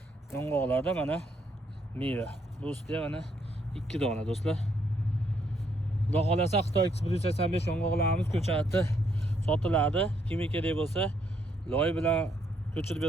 yong'oqlarda mana meva. Bu ustida mana 2 dona do'stlar. Xudo xolasa Xitoy X185 yong'oqlarimiz ko'chatda sotiladi. Kimga kerak bo'lsa, loy bilan ko'chirib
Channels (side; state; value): both; normal; correlation 0.72